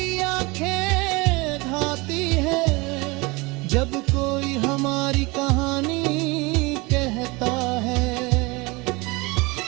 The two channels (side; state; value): left; quieter; 25.1 dB